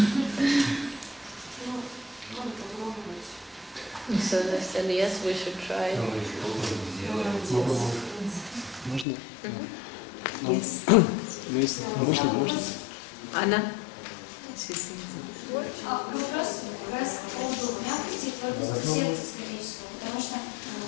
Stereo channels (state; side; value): drops out; right; at 9.1 s